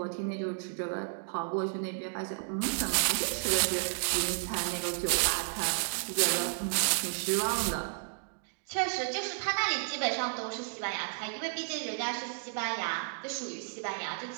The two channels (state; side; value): silent; left; digital silence